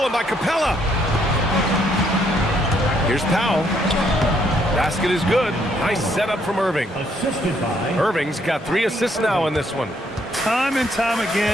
by Capella. Here's Powell. Basket is good. Nice setup from Irving. Assisted by Irving's got 3 assists now in this one. Time and time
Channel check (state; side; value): normal; both; correlation 0.70